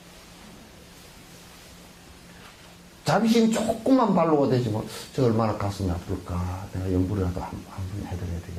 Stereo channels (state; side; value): identical; both; correlation 1.00